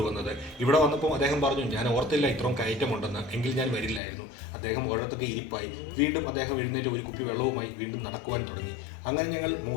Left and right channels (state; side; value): drops out; right; at 4.0 s